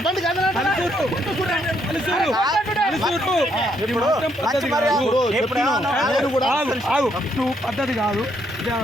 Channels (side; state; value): both; normal; correlation 0.73